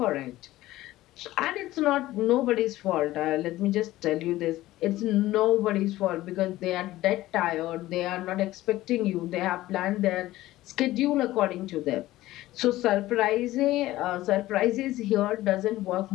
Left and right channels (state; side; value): quieter; right; 16.3 dB